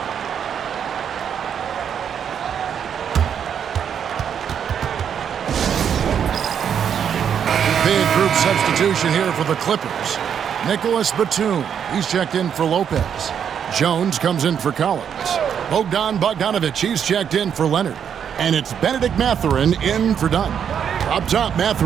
Big group substitution here for the Clippers. Nicholas Batum, he's checked in for Lopez. Jones comes in for Collins. Bogdan Bogdanovic, he's checked in for Leonard. And it's Benedict Mathurin in for Dunn. Up top,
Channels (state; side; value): quieter; left; 8.1 dB